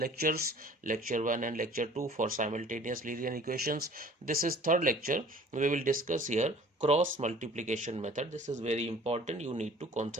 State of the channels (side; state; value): both; normal; correlation 0.49